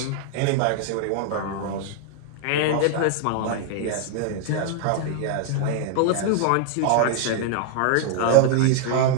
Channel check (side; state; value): both; different; correlation 0.00